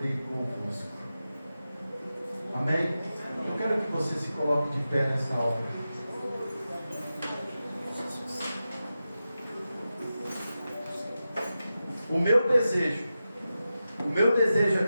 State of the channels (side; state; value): both; inverted; correlation -0.92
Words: de convosco. Amém? Eu quero que você se coloque de pé nessa hora. O meu desejo